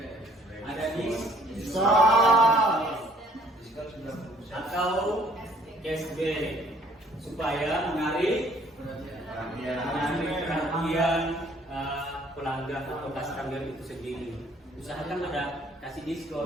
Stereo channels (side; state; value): both; normal; correlation 0.59